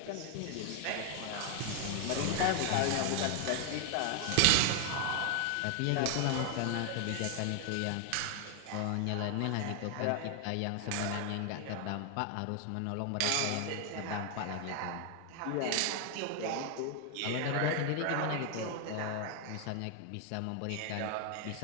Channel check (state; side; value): different; both; correlation 0.00